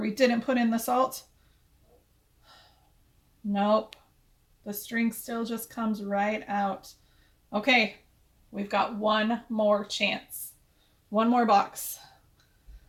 didn't put in the salt. Nope. The string still just comes right out. Okay, we've got one more chance. One more box.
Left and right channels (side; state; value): both; identical; correlation 1.00